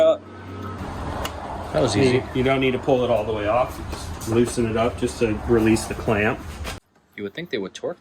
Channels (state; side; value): identical; both; correlation 1.00